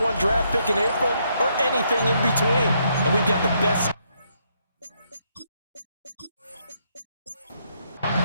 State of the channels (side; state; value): both; inverted; correlation -0.74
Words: draft pick in April, or anything in between. And we've got the best.